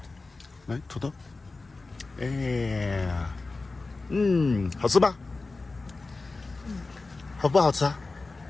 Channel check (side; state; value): right; quieter; 3.6 dB